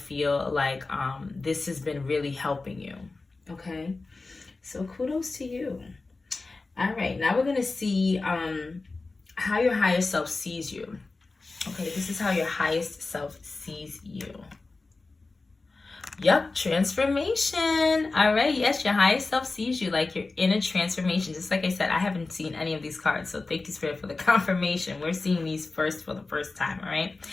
like this has been really helping you, okay? So kudos to you. All right, now we're gonna see how your higher self sees you. Okay, this is how your highest self sees you. Yep, transformation. All right, yes, your highest self sees you like you're in a transformation. Just like I said, I haven't seen any of these cards, so thank you, Spirit, for the confirmation. We're seeing these for the first time, all right?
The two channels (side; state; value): right; quieter; 3.6 dB